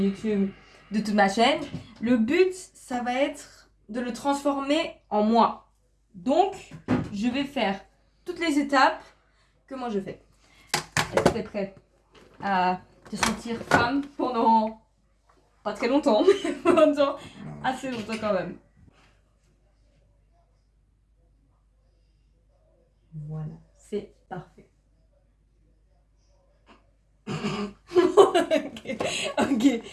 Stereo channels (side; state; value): both; identical; correlation 1.00